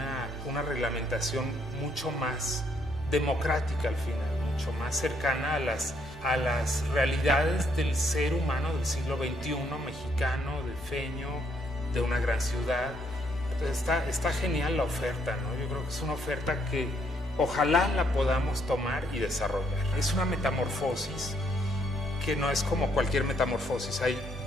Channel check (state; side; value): normal; both; correlation 0.71